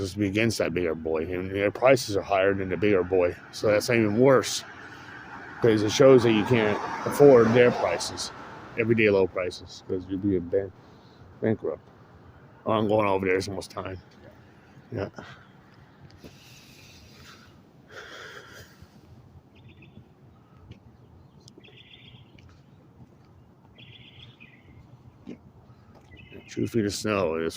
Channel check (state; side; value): identical; both; correlation 1.00